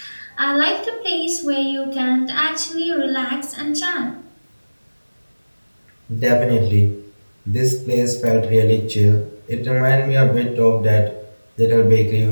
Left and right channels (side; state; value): both; inverted; correlation -1.00